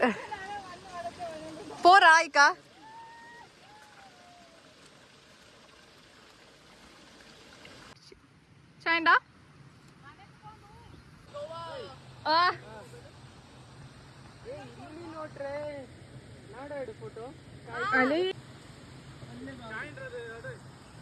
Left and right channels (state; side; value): identical; both; correlation 1.00